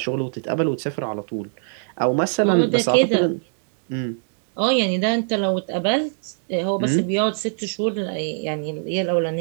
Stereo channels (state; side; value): silent; left; digital silence